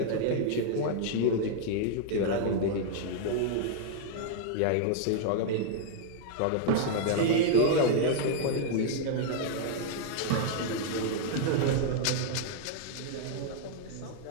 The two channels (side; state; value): both; different; correlation -0.01